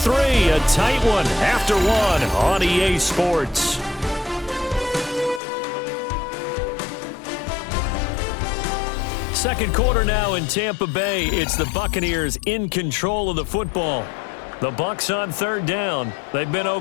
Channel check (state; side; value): drops out; right; at 5.4 s